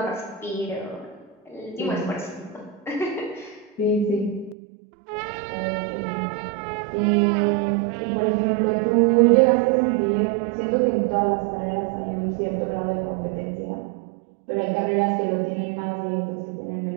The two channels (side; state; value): left; drops out; at 4.5 s